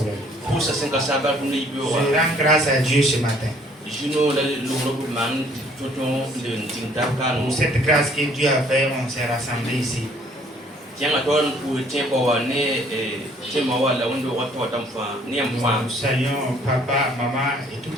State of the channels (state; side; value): normal; both; correlation 0.60